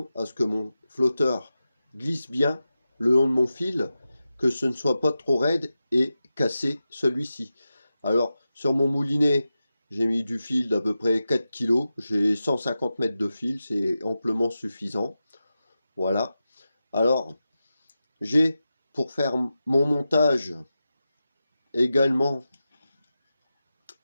à ce que mon flotteur glisse bien le long de mon fil, que ce ne soit pas trop raide et casser celui-ci. Alors sur mon moulinet, j'ai mis du fil d'à peu près 4 kg, j'ai 150 mètres de fil, c'est amplement suffisant. Voilà. Alors j'ai, pour faire mon montage, également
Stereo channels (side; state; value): both; inverted; correlation -0.92